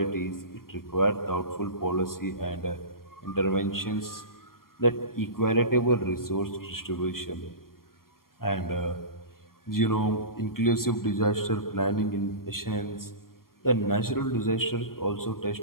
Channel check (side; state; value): right; late; 0.92 ms